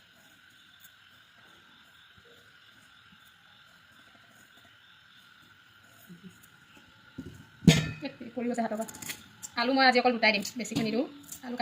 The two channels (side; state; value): both; identical; correlation 1.00